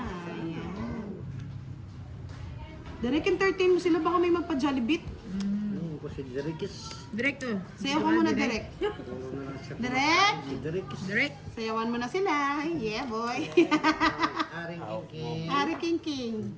Ayan. Direct entertain mo sila, baka may magpa-Jollibit. Ko si Derikis. Direkto. Sayaw ka muna, Direct. Direct! Si Derikis. Direct. Sayawan mo na sila. Yeah, boy. Aring King. Ari King King.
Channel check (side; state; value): both; identical; correlation 1.00